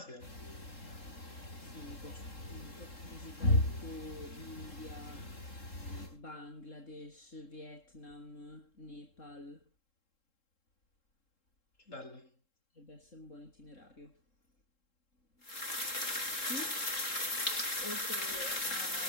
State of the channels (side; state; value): right; late; 3.7 ms